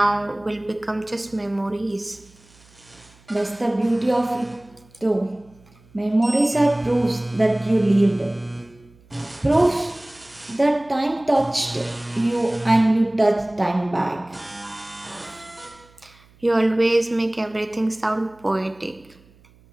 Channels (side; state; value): right; noise; hum, 28 dB below the sound